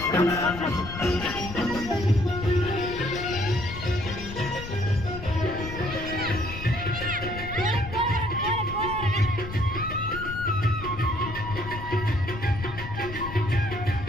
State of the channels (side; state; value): left; noise; rumble, 9 dB below the sound